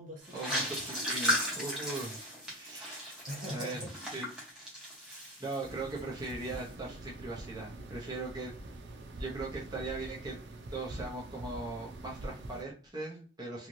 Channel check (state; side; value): normal; both; correlation 0.31